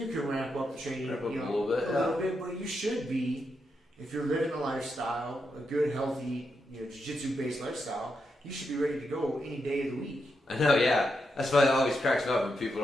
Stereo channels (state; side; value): normal; both; correlation 0.84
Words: can ramp up the training a little bit, but you should be, if you're living a lifestyle, a good, healthy, jiu-jitsu based lifestyle, you should be ready to go any day of the week. I know, yeah. That's why it always cracks me up when people